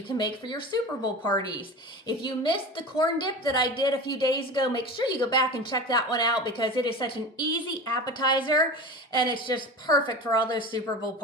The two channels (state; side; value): normal; both; correlation 0.31